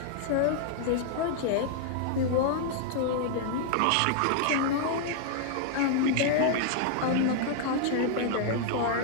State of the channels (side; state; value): both; different; correlation 0.00